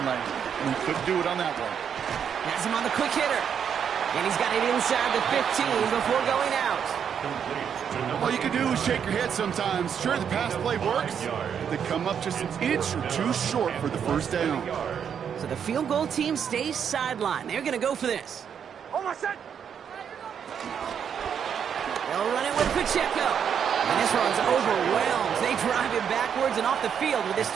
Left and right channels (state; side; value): quieter; left; 7.8 dB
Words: lane. And he couldn't do it on that one. Has him on the quick hitter. And he's got it inside the 15 before going out. All you can do is shake your head sometimes. Sure, the pass play works. They come up just an inch or 2 short for the first down. So the field goal team stays sidelined. They're going to go for this. Almost set. They'll run it with Pacheco. And this one's overwhelmed. They drive him backwards and off the field with this